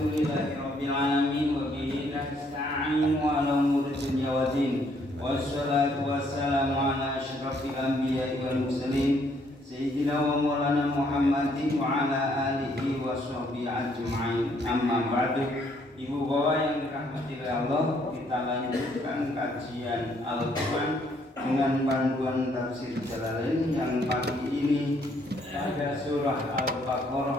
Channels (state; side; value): normal; both; correlation 0.68